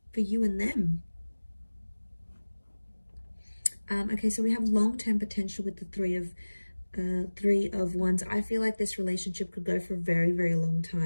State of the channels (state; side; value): inverted; both; correlation -1.00